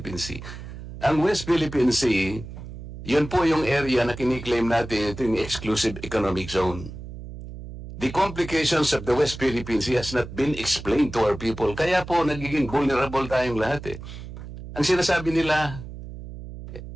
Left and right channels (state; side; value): noise; right; hum, 11 dB below the sound